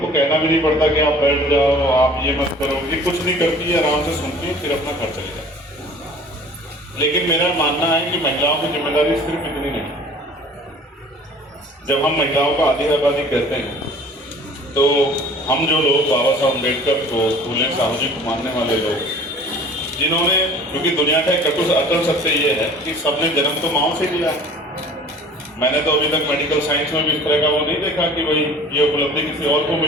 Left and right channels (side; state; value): both; normal; correlation 0.47